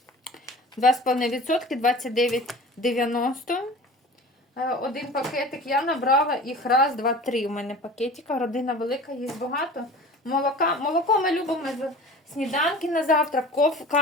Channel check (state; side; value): normal; both; correlation 0.40